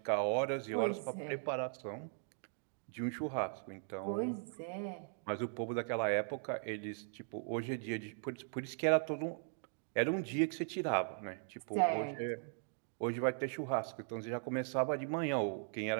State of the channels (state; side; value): silent; left; digital silence